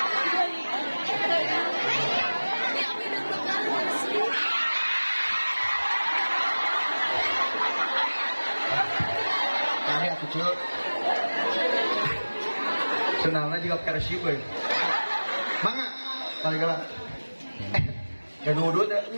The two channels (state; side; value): inverted; both; correlation -1.00